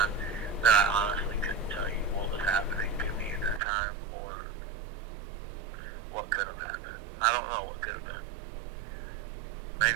that I honestly couldn't tell you what was happening to me at that time, or what could have happened. I don't know what could have been.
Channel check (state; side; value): drops out; left; at 3.6 s